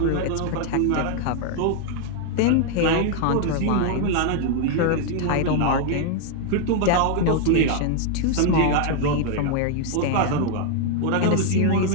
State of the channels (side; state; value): both; different; correlation 0.00